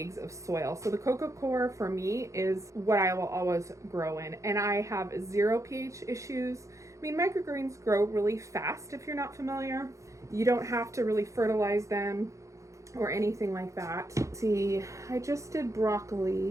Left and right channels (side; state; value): left; late; 0.15 ms